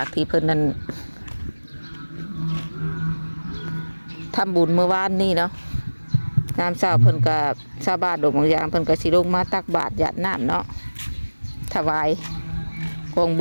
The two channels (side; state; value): both; inverted; correlation -1.00